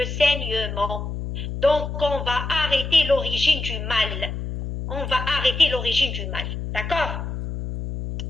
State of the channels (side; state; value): left; noise; hum, 5 dB below the sound